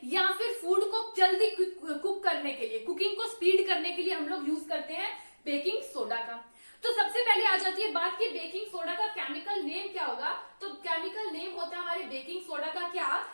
या फिर फूड को जल्दी कुक करने के लिए, कुकिंग को स्पीड करने के लिए हम लोग यूज करते हैं बेकिंग सोडा का। तो सबसे पहले आ जाती है बात की बेकिंग सोडा का केमिकल नेम क्या होगा। तो केमिकल नेम होता है हमारे बेकिंग सोडा का, क्या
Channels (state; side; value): inverted; both; correlation -1.00